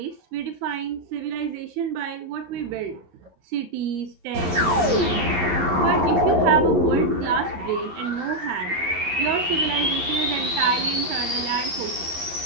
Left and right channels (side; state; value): left; late; 11 ms